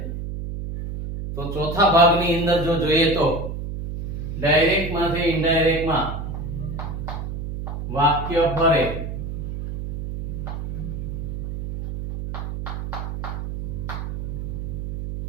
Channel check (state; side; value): noise; right; hum, 5 dB below the sound